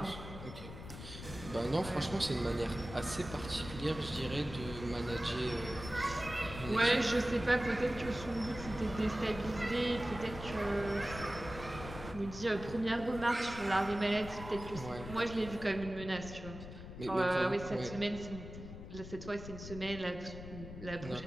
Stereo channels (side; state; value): left; noise; rumble, 11 dB below the sound